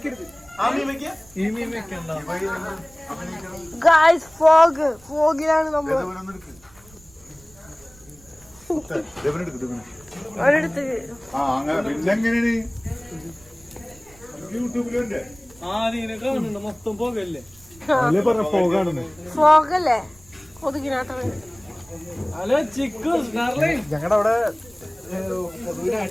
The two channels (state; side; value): noise; right; rumble, 26 dB below the sound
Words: ഗായ്സ് ഫോഗിലാണ് നമ്മൾ ഒരിടത്ത് ഫോഗല്ലേ കൊതുകിനാട്ട. ഞങ്ങളുടെ അവിടെ